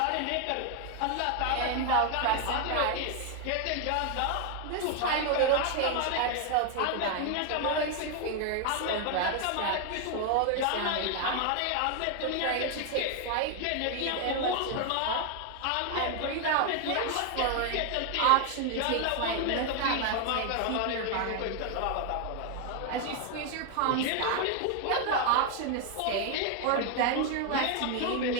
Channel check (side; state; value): both; different; correlation 0.01